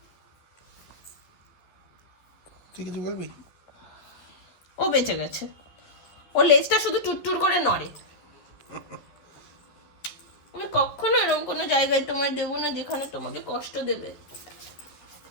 তুই কিছু বলবি? ও বেঁচে গেছে, ওর লেজটা শুধু টুটটুর করে নড়ে। আমি কখনো এরকম কোনো জায়গায় তোমায় দেবো না যেখানে তোমাকে কষ্ট দেবে।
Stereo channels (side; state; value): right; late; 12 ms